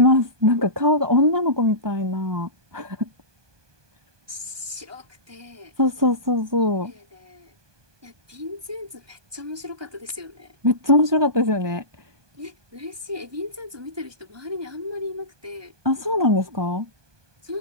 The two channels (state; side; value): late; left; 1.2 ms